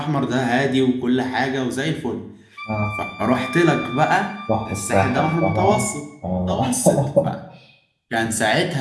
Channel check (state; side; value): identical; both; correlation 1.00